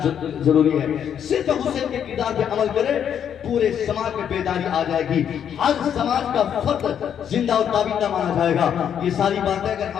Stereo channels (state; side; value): quieter; right; 8.8 dB